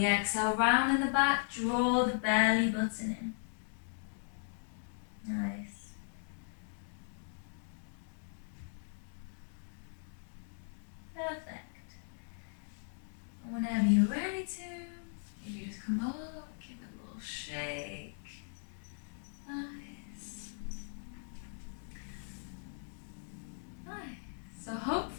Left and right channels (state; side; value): silent; right; digital silence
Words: exhale, round in the back, draw the belly button in. Nice. Perfect. And whenever you're ready to, you just come up, give it a little shake. Nice. Nice. So